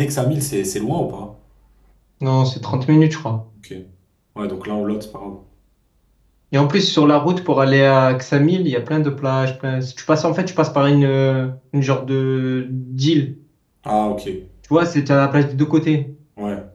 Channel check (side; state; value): both; identical; correlation 1.00